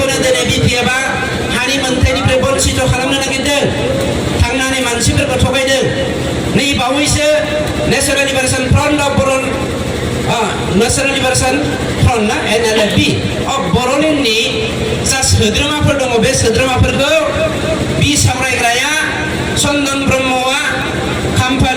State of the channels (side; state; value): both; identical; correlation 1.00